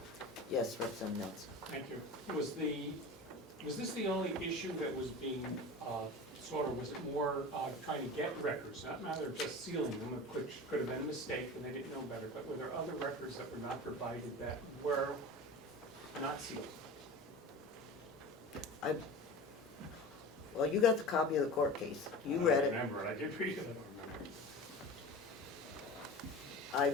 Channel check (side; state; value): both; normal; correlation 0.33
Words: Yes, Representative Nelson. Thank you. Was this the only issue that was being was it more trying to get records, not a matter of just sealing them, which could have been a mistake and they didn't know better, but were there other records that were not provided that were not sealed? Well, you got the copy of the court case. You read it. I remember it. I did read it. I